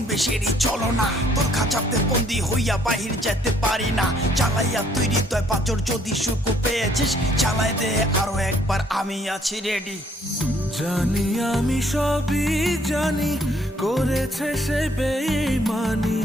বেশেরই চলো না, তোর খাঁচাতে বন্দি হইয়া বাহির যেতে পারি না। চালাইয়া তুই হৃদয় পাচর, যদি সুখ পেয়েছিস চালাই দে আরো একবার, আমি আছি রেডি। জানি আমি সবই জানি, করেছে সে বেঈমানি,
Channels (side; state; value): both; normal; correlation 0.65